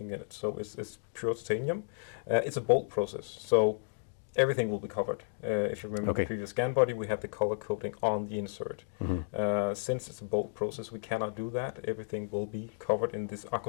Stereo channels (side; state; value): right; silent; digital silence